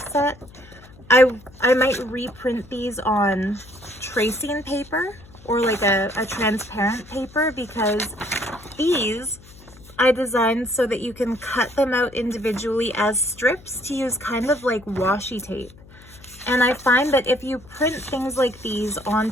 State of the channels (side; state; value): left; noise; hum, 22 dB below the sound